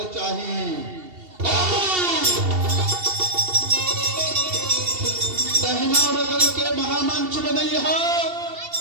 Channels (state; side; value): late; left; 2.7 ms